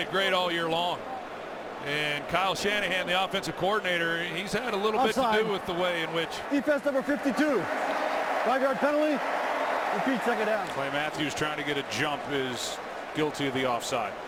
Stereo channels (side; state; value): both; identical; correlation 1.00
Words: great all year long. And Kyle Shanahan, the offensive coordinator, he's had a little bit to do with the way in which. Defense number 52. 5-yard penalty. Repeat, second down. Clay Matthews trying to get a jump is guilty of the offside.